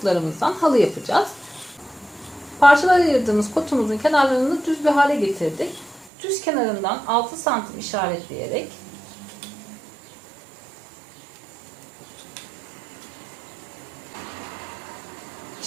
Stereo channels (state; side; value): drops out; left; at 6.1 s